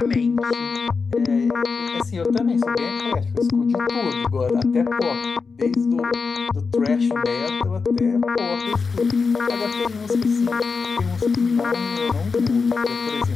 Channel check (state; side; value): quieter; right; 4.9 dB